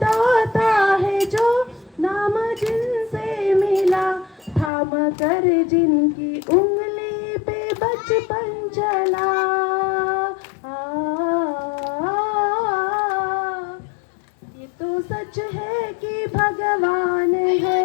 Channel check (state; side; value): drops out; right; at 4.7 s